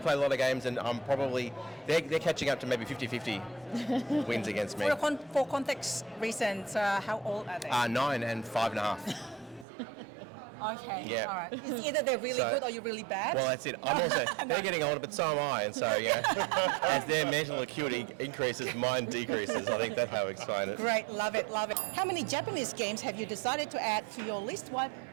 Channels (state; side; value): drops out; left; at 9.7 s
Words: a lot of games, and I'm probably they're catching up to maybe 50-50 wins against me. For context reasons, how old are they? 9 and 5.5. Okay, Yeah. all right. It's either they're really So- good or you're really bad. Well, that's it. I'm also they're getting older, but so am I, and so as their mental acuity increases, mine decreases. I think that's how we explain it. Great, love it, love it. How many Japanese games have you decided to add to your list